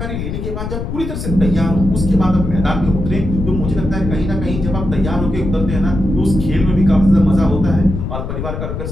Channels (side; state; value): left; noise; rumble, 5 dB below the sound